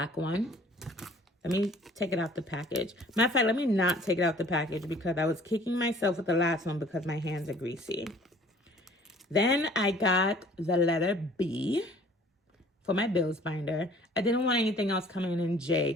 one. Let me take it out the package. Matter of fact, let me not take it out the package because I was kicking myself with the last one because my hands are greasy. Then I got the letter B for my bills binder. I didn't want anything else coming in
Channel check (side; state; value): both; normal; correlation 0.52